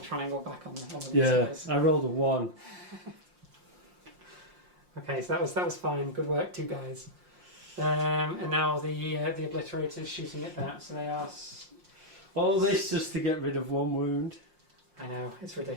triangle back on the Yeah, guys. I rolled a 1. Okay, so that was fine. Good work, 2 guys. And now the obliterators shooting at that. So they are. All this just to get rid of 1 wound. I know, it's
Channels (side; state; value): left; late; 5.6 ms